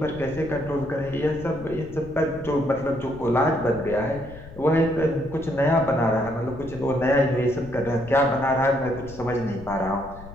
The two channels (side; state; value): left; noise; rumble, 16 dB below the sound